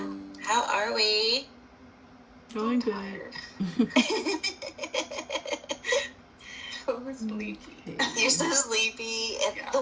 how are we? Doing good. Tired. So sleepy. You're so sleepy. And Yeah.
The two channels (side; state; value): both; identical; correlation 1.00